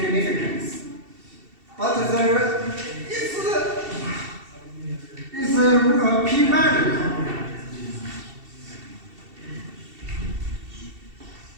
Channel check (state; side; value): late; left; 2.7 ms